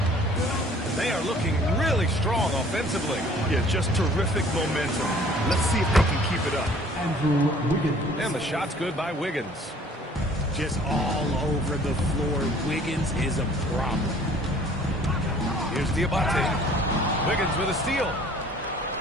They are looking really strong offensively. Yeah, just terrific momentum. Let's see if they can keep it up. Andrew Wiggins. And the shot's good by Wiggins. Just all over the floor. Wiggins is a problem. Here's Diabate. Wiggins with a steal.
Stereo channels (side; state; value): both; normal; correlation 0.54